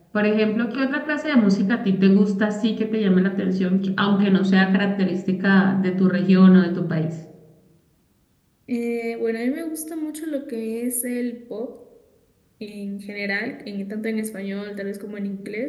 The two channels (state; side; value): identical; both; correlation 1.00